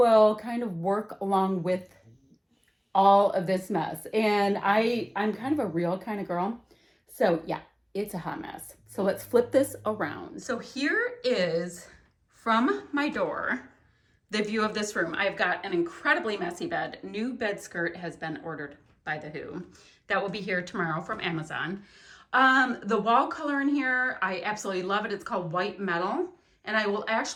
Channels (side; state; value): both; identical; correlation 1.00